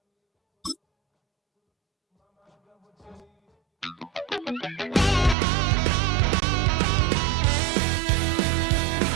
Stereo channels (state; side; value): drops out; left; at 5.4 s